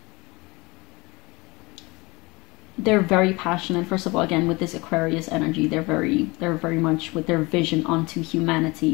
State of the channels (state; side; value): quieter; right; 24.4 dB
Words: They're very passionate. First of all, again, with this Aquarius energy, they're very much with their vision onto